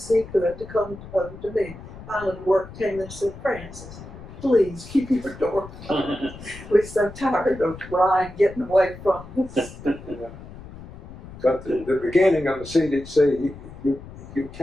he could to come over to me. Finally, the work came and said, Francis, please keep your door closed. We're so tired of Ryan getting away from us. Yeah. But the beginning of the CDC, you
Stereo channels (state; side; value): noise; left; rumble, 15 dB below the sound